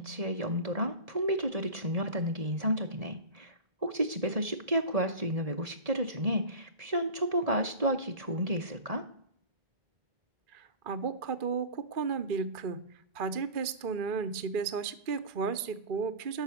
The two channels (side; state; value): left; late; 2.4 ms